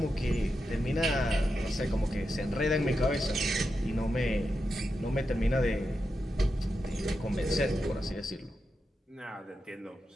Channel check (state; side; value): normal; both; correlation 0.88